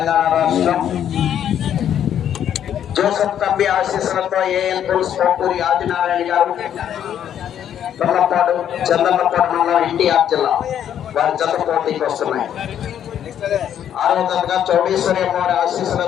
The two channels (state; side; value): quieter; right; 9.8 dB